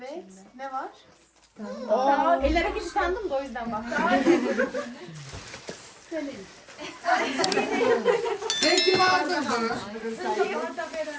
Ne var? Ellere gitti sandım da o yüzden bak. Sen kim aldın bunu?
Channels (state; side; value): identical; both; correlation 1.00